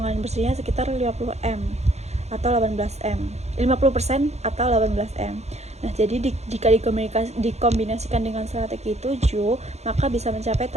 bersihnya sekitar 50M atau 18M, 50% atau 18M. Nah, jadi jika dikombinasikan dengan strategi 7, maka bisa mencapai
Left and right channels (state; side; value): late; left; 0.32 ms